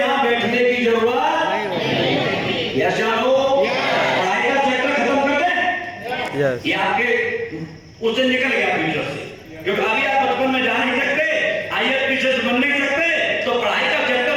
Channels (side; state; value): both; identical; correlation 1.00